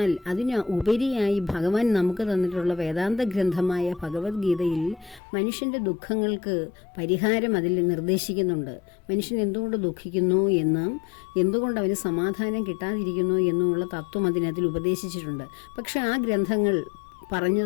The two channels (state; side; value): drops out; right; at 5.2 s